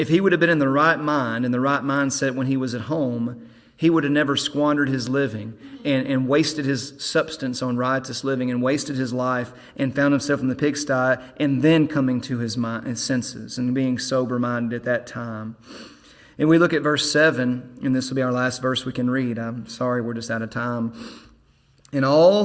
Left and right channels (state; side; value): identical; both; correlation 1.00